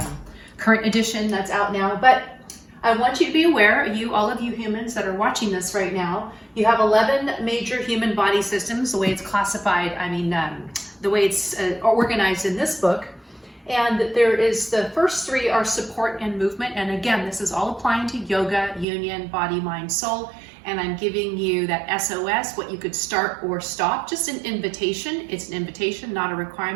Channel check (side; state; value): left; drops out; at 18.9 s